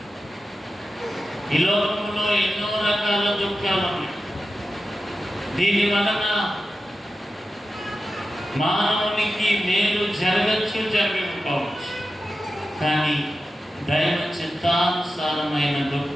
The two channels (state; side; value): normal; both; correlation 0.92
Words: ఈ లోకంలో ఎన్నో రకాల దుఃఖాలు ఉన్నాయి. దీని వలన మానవునికి మేలు జరగచ్చు, జరగకపోవచ్చు. కానీ దైవ చిత్తానుసారమైన